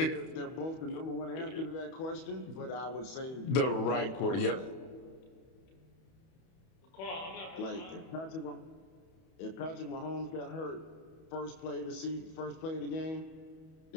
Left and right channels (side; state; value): right; late; 31 ms